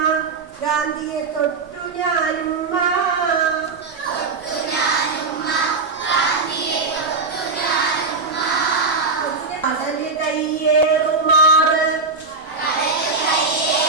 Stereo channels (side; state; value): left; quieter; 4.2 dB